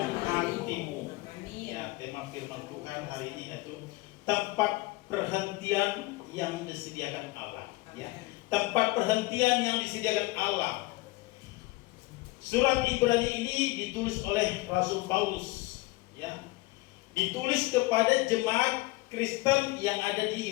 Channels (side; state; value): right; quieter; 21.7 dB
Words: hatimu. Ya, tema firman Tuhan hari ini yaitu tempat perhentian yang disediakan Allah. Ya, tempat perhentian yang disediakan Allah. Surat Ibrani ini ditulis oleh Rasul Paulus, ya. Ditulis kepada jemaat Kristen yang ada